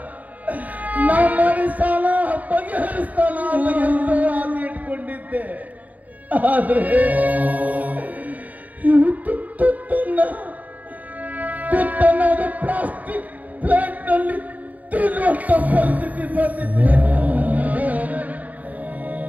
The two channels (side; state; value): left; late; 0.076 ms